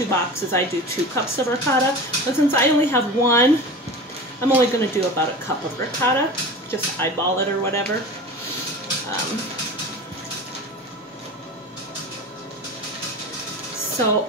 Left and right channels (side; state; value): both; normal; correlation 0.33